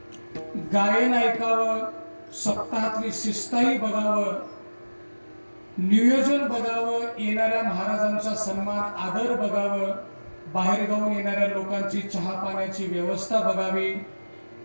गायन ऐकावं, सप्ताहातली शिस्ताही बघावं, नियोजन बघावं, येणाऱ्या महाराजांचा सन्मान आदर बघावं, बाहेर गावून येणाऱ्या लोकांची चहा पाण्याची व्यवस्था बघावी,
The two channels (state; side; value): inverted; both; correlation -1.00